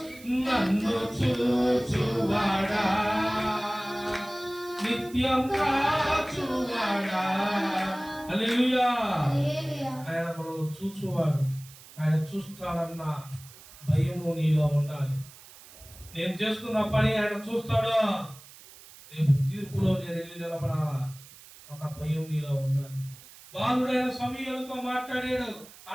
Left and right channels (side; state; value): right; noise; hiss, 20 dB below the sound